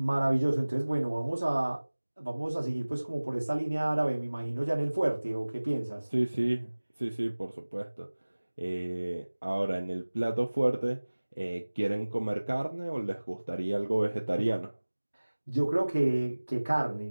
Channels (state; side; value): inverted; both; correlation -1.00